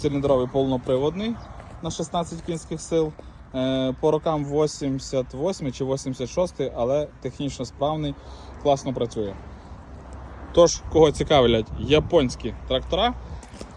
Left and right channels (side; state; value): both; identical; correlation 1.00